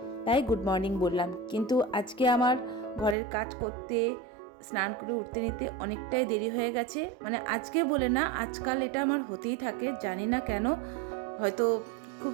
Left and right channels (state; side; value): drops out; left; at 3.2 s